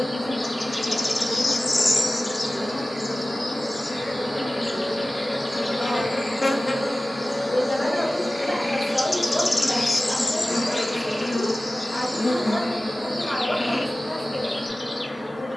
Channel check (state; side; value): normal; both; correlation 0.97